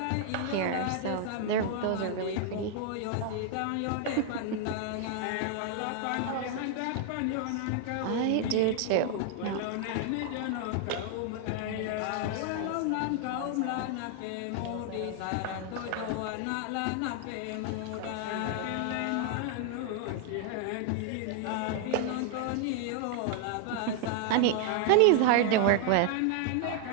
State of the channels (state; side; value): different; both; correlation 0.00